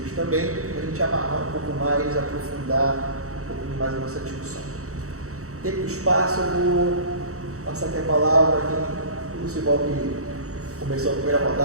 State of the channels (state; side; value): late; left; 0.65 ms